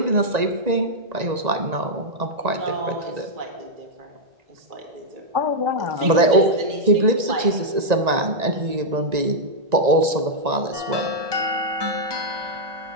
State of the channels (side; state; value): left; late; 1.9 ms